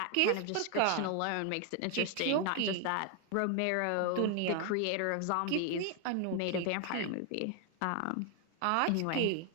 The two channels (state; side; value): different; both; correlation 0.00